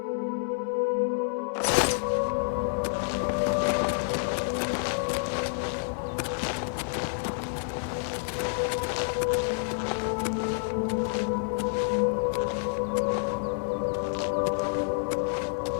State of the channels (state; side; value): silent; right; digital silence